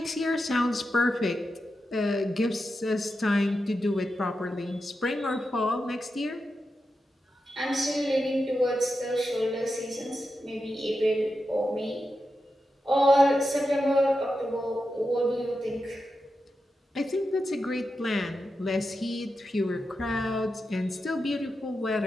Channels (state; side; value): normal; both; correlation 0.89